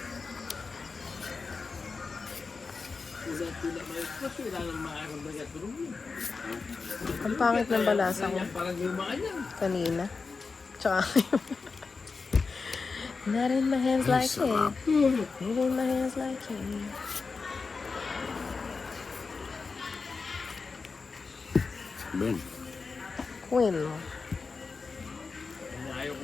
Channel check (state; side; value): quieter; right; 4.5 dB